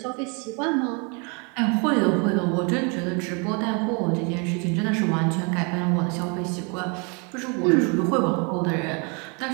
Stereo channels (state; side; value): quieter; left; 33.5 dB